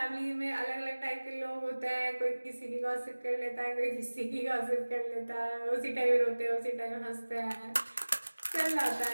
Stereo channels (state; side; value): inverted; both; correlation -1.00